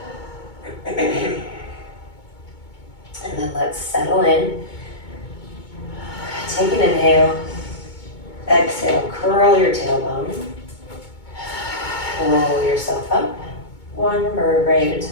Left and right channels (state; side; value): late; right; 2.2 ms